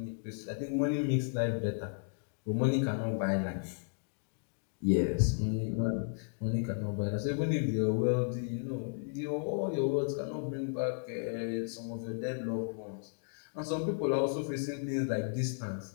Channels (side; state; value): right; silent; digital silence